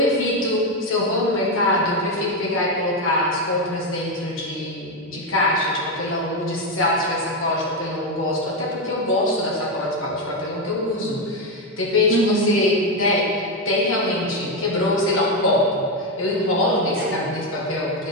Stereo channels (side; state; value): both; normal; correlation 0.08